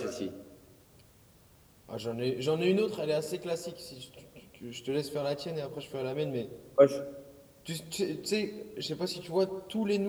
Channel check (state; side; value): identical; both; correlation 1.00